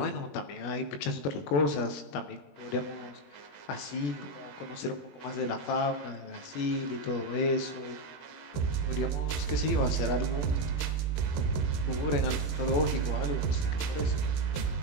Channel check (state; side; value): late; right; 21 ms